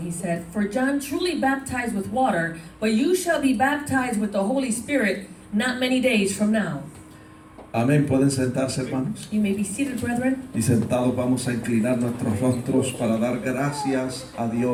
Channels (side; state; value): both; identical; correlation 1.00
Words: he said, "For John truly baptized with water, but you shall be baptized with the Holy Spirit not many days from now." Amén. Pueden sentarse, hermanos. You may be seated, brethren. Y sentados vamos a inclinar nuestros rostros para dar gracias a